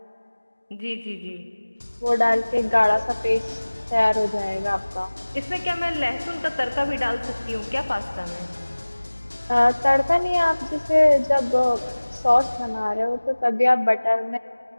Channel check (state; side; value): inverted; both; correlation -1.00